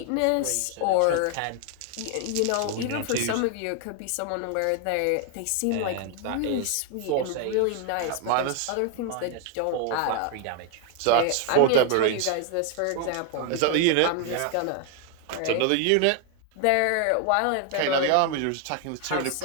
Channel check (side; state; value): both; different; correlation 0.00